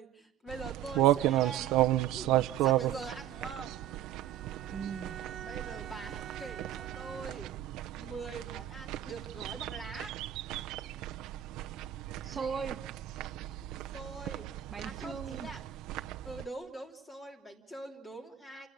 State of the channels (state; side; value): quieter; left; 11.7 dB